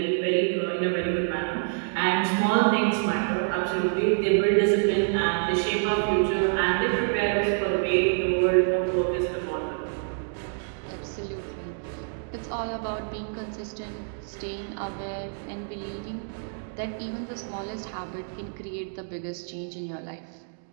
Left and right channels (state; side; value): silent; left; digital silence